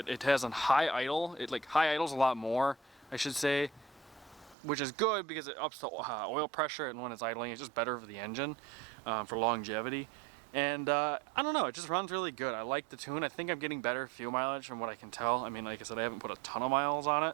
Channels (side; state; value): left; drops out; at 4.5 s